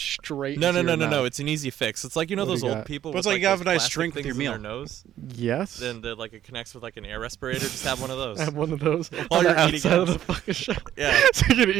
No, into no, your no, no, no. mouth. It's an easy fix. It's like, you know, What do those you old got? people But with it's like you have those a nice plastic drink with things your in meal. their nose. Yes. Then it connects with like an air respirator. Just have one of those. I have one of those While on you're the eating outside of it. the fucking shower. Yeah. So you can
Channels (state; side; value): quieter; left; 11.7 dB